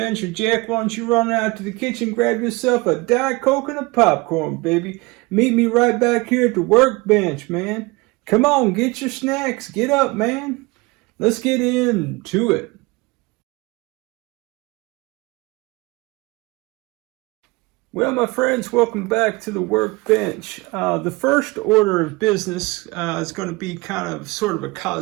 Jack, why don't you run out to the kitchen, grab yourself a Diet Coke and a popcorn, baby. Meet me right back here at the workbench, man. Come on, get your snacks. Get up, man. Let's get into it. Well, my friends, welcome back to the workbench. The first order of business is going to be kind of sort of a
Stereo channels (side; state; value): left; quieter; 24.2 dB